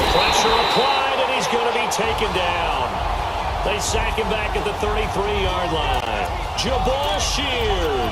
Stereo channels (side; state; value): both; identical; correlation 1.00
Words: Pressure applied, and he's going to be taken down. They sack him back at the 33-yard line. Jabal Sheard.